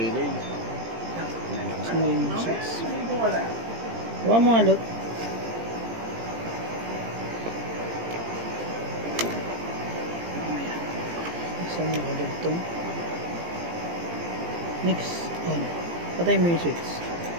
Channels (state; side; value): late; left; 17 ms